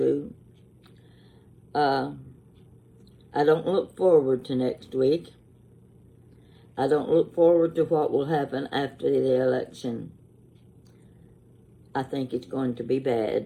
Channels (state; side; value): identical; both; correlation 1.00